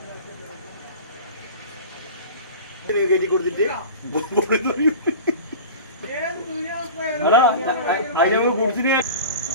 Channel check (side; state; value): both; inverted; correlation -0.35